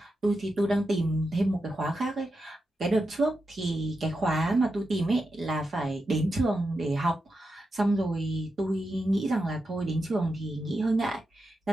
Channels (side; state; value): both; normal; correlation 0.88